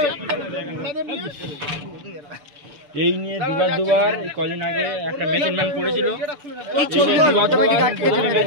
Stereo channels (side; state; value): left; late; 6.8 ms